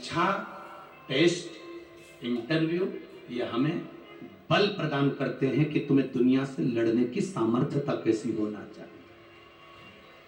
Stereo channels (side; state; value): both; identical; correlation 1.00